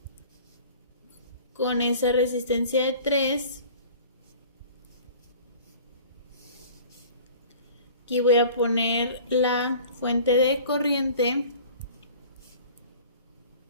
con esa resistencia de 3. Aquí voy a poner la fuente de corriente.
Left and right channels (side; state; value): both; inverted; correlation -0.45